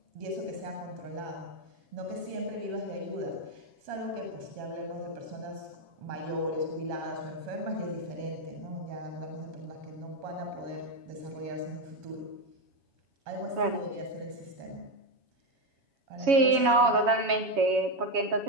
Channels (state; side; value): late; left; 7.2 ms